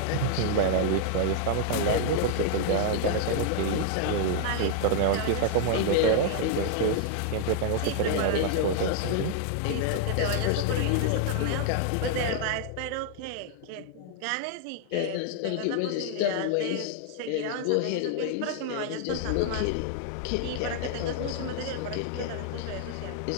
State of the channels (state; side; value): different; both; correlation 0.00